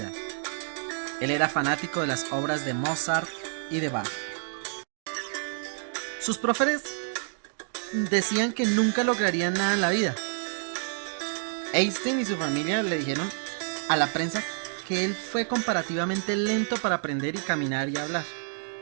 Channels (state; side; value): silent; left; digital silence